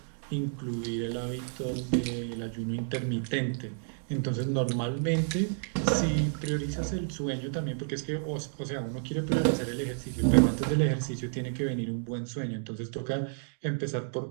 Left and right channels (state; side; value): silent; left; digital silence